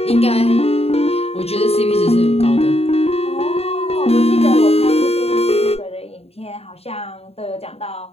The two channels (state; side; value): late; right; 0.29 ms